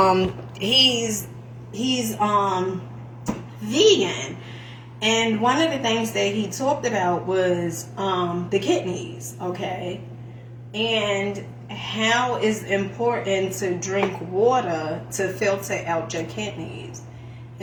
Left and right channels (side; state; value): both; identical; correlation 1.00